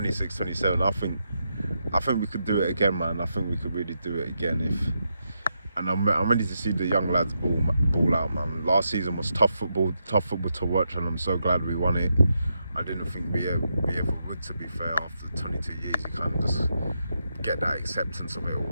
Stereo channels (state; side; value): inverted; both; correlation -0.83